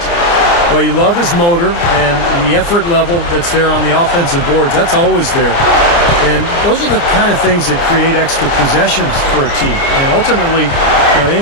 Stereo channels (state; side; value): late; right; 29 ms